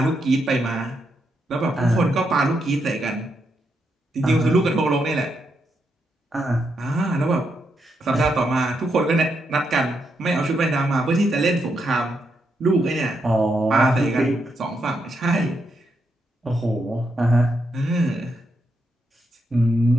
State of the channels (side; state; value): both; normal; correlation 0.81